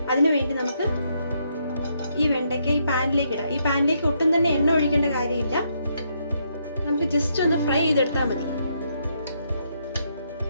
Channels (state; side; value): inverted; both; correlation -0.76